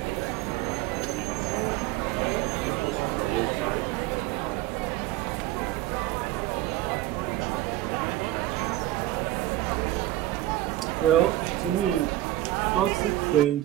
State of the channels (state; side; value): quieter; left; 15.3 dB